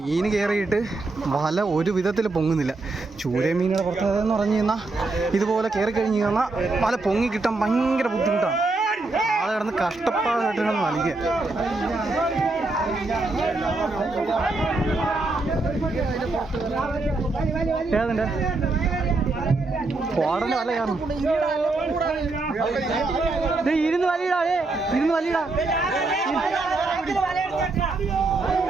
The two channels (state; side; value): quieter; left; 3.3 dB